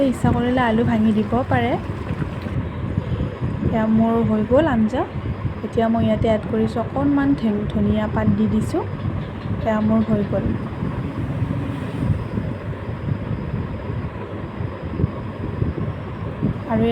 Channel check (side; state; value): both; identical; correlation 1.00